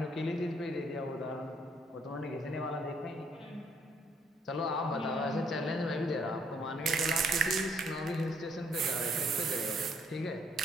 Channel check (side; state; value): both; normal; correlation 0.67